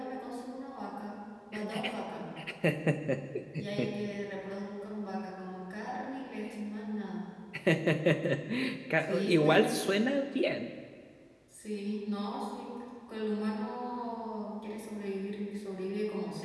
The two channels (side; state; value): both; identical; correlation 1.00